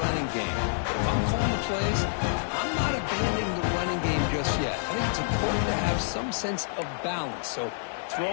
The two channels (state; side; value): silent; right; digital silence